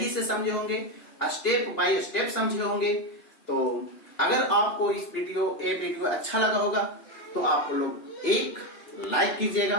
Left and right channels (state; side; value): late; right; 2.9 ms